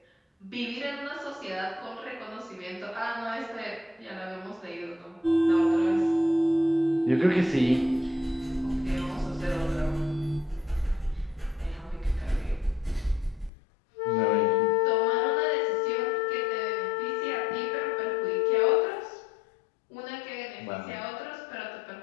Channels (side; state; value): right; drops out; at 13.5 s